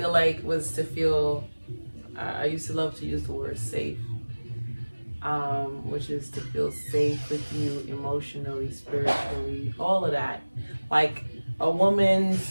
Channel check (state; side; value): inverted; both; correlation -1.00